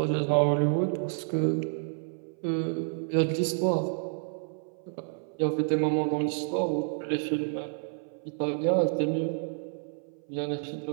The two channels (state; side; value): silent; left; 58 dB below the other